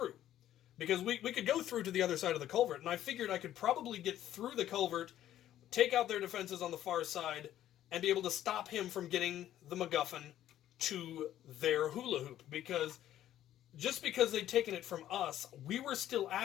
Because we could go through to the other side of the culvert, and I figured I could probably get through the culvert, take out their defenses on the far side, and be able to stop him from getting the MacGuffin to their hula hoop. Because just because they'd taken it from us, we were still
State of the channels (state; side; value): quieter; right; 12.2 dB